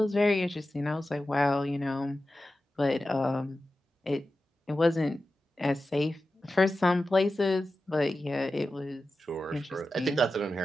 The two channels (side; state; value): both; normal; correlation 0.93